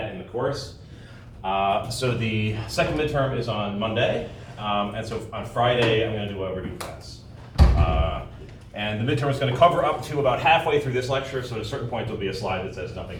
in the course. So the second midterm is on Monday, and so on Friday I'm going to do a review class. And the midterm is going to cover up to about halfway through this lecture, so at a certain point there'll be a slide that says nothing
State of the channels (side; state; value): both; identical; correlation 1.00